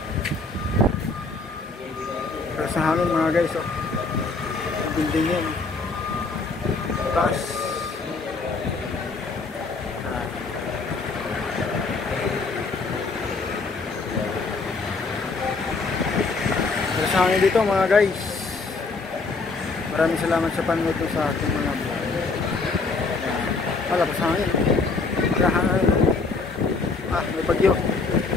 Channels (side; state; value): right; quieter; 3.9 dB